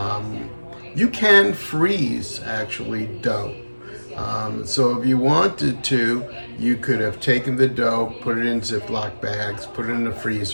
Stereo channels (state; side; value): inverted; both; correlation -1.00